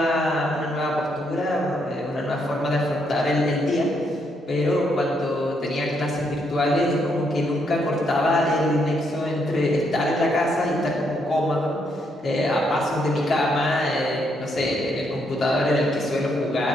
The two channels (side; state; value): both; normal; correlation 0.75